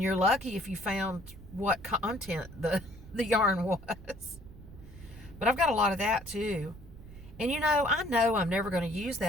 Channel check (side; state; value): right; noise; rumble, 17 dB below the sound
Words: you're lucky if you found what content the yarn was. But I've got a lot of that too. And I know I'm never going to use